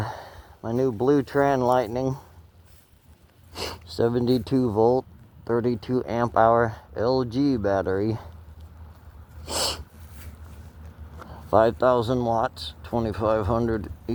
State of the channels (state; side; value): identical; both; correlation 1.00